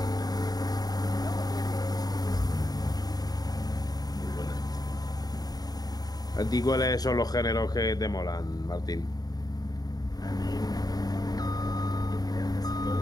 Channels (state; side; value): late; right; 0.19 ms